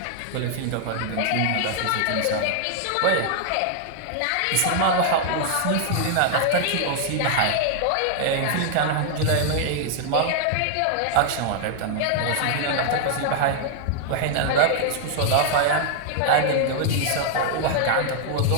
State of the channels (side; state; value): both; different; correlation 0.00